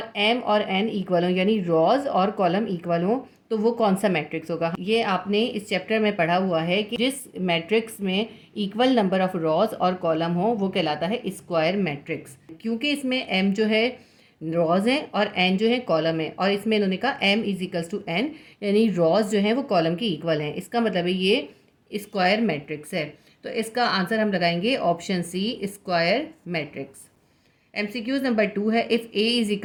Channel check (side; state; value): both; identical; correlation 1.00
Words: एम और एन इक्वल हों, यानी रॉज और कॉलम इक्वल हों, तो वो कौन सा मैट्रिक्स होगा। ये आपने इस चैप्टर में पढ़ा हुआ है कि जिस मैट्रिक्स में इक्वल नंबर ऑफ रॉज और कॉलम हो वो कहलाता है स्क्वायर मैट्रिक्स। क्योंकि इसमें एम जो है रॉज है और एन जो है कॉलम है, और इसमें इन्होंने कहा M is equals to N, यानी रॉज जो है वो कॉलम के इक्वल हैं। इसका मतलब है ये स्क्वायर मैट्रिक्स है। तो इसका आंसर हम लगाएंगे option C, square matrix. MCQs number 2 है, if A is